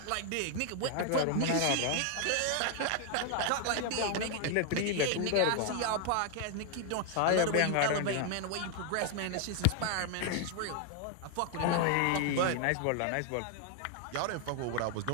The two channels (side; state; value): both; different; correlation 0.00